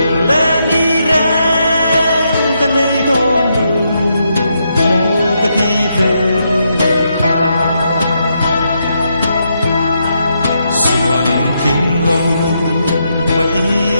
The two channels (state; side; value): inverted; both; correlation -0.80